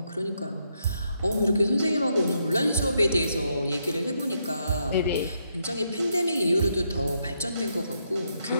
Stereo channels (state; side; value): inverted; both; correlation -0.78